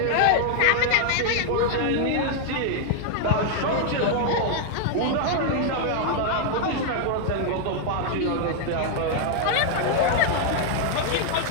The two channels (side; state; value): both; different; correlation 0.00